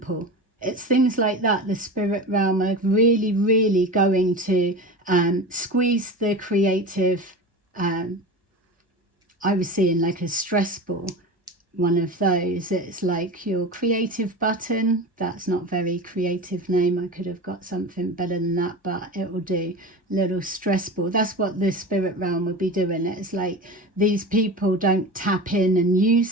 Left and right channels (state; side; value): normal; both; correlation 0.29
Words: it's things like that. The spirit realm are really, really going to squeeze the creative. I was seeing like a stress ball, one of those. It's like your creative button. That's not very creative name. I could have got something better than that, but it will do. Little stress ball. That's what the spirit realm would be doing. It's like these people don't tap in and